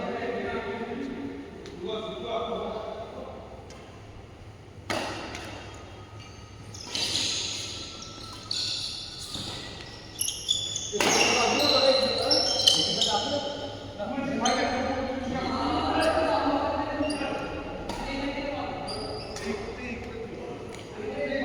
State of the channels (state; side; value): identical; both; correlation 1.00